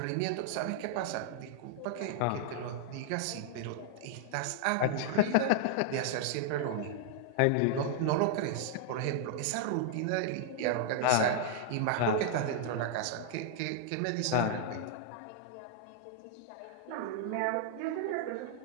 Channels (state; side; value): different; both; correlation -0.01